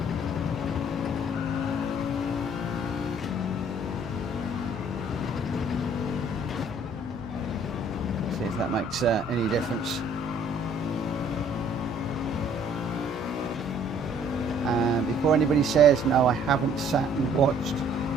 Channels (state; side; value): normal; both; correlation 0.59